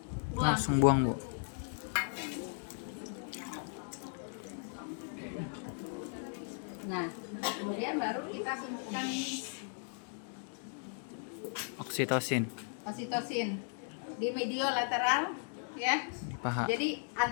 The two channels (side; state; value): right; silent; 53 dB below the other